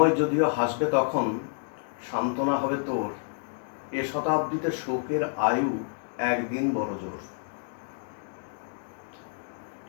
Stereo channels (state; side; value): silent; right; digital silence